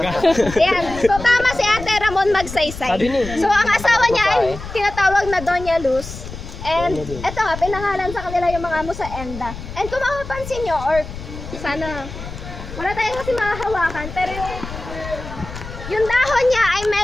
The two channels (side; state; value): left; noise; rumble, 11 dB below the sound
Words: Ayan. So, tama si Ate Ramon Magsaysay. So, ang asawa niya ay tinatawag na Doña Luz. And, eto nga, pinangalan sa kanila yung mga Musaenda. And kung makapansin nyo, or sana, wala tayong kasi makahawakan, pero yung dahon niya ay